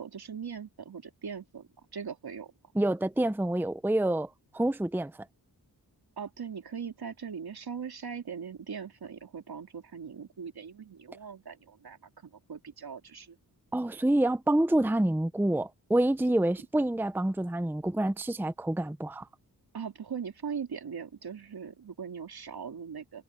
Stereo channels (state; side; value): normal; both; correlation 0.88